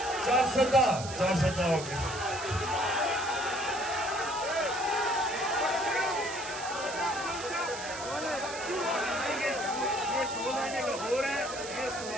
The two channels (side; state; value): right; noise; hiss, 10 dB below the sound